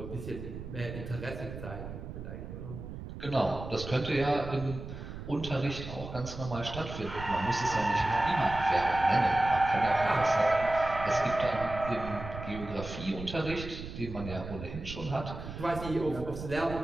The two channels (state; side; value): noise; right; rumble, 10 dB below the sound